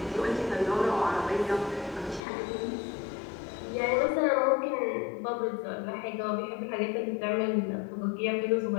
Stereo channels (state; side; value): drops out; right; at 2.2 s